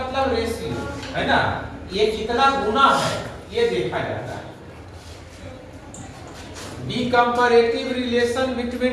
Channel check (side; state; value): both; identical; correlation 1.00